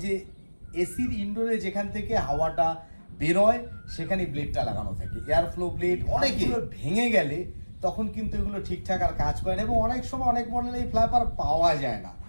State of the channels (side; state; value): both; inverted; correlation -1.00